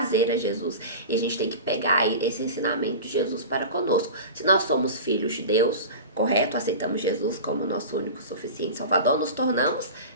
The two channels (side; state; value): both; inverted; correlation -0.31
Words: a Jesus. E a gente tem que pegar esse ensinamento de Jesus para conosco. Se nós somos filhos de Deus, correto? Aceitamos Jesus como nosso único e suficiente Salvador, nos tornamos